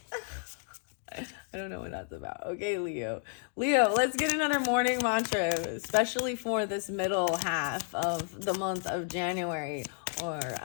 I don't know what that's about. Okay, Leo. Leo, let's get another morning mantra, especially for this middle half of the month of January. Or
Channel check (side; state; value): right; silent; 57 dB below the other